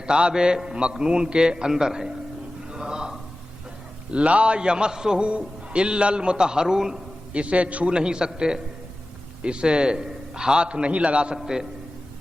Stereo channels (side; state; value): both; normal; correlation 0.96